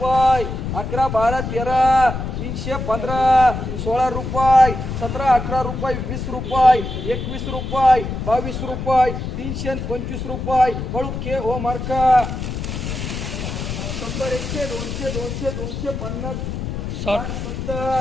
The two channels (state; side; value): noise; left; rumble, 5 dB below the sound